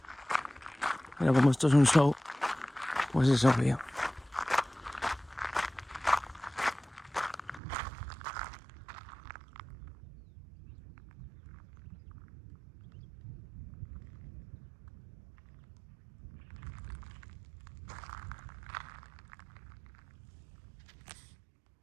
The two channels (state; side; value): drops out; left; at 7.6 s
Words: Pero como esto es un show, pues es obvio.